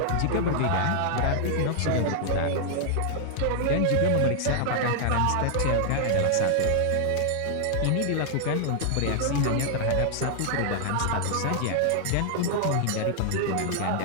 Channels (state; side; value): different; both; correlation 0.00